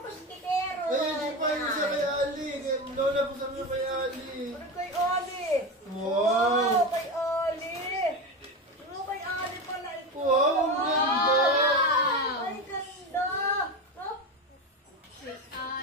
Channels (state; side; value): normal; both; correlation 0.20